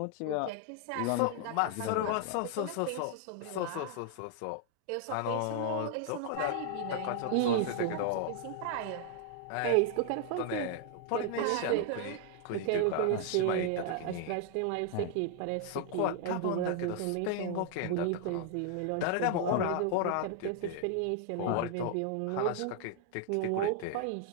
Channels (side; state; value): both; different; correlation 0.00